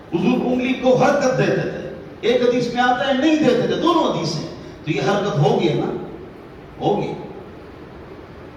حضور انگلی کو حرکت دیتے تھے, ایک حدیث میں آتا ہے نہیں دیتے تھے. دونوں حدیث ہیں. تو یہ حرکت ہوگی نا, ہوگی.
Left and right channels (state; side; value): identical; both; correlation 1.00